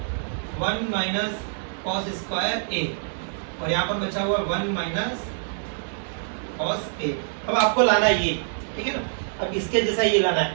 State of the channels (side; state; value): left; silent; digital silence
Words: 1 माइनस cos स्क्वायर a और यहाँ पर बचा हुआ 1 माइनस cos a। अब आपको लाना है ये, ठीक है ना, अब इसके जैसा ये लाना